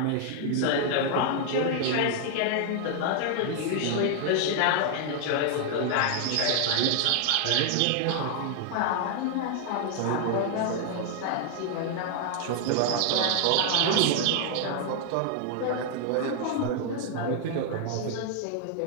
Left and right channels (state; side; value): different; both; correlation 0.00